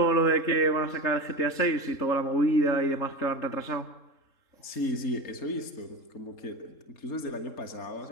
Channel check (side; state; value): right; late; 3.7 ms